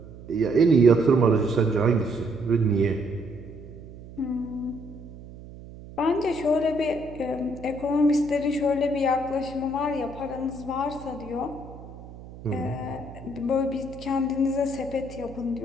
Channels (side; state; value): right; noise; hum, 16 dB below the sound